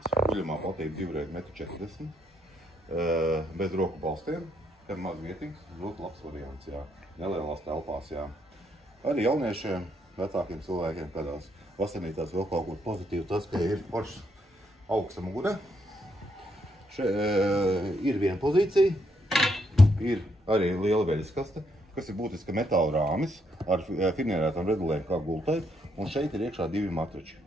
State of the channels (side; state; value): both; normal; correlation 0.75